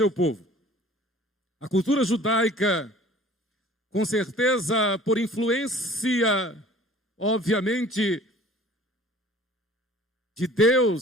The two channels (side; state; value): both; normal; correlation 0.49